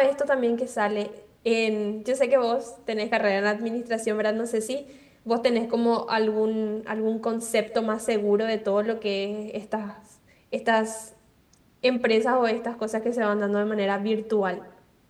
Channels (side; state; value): both; identical; correlation 1.00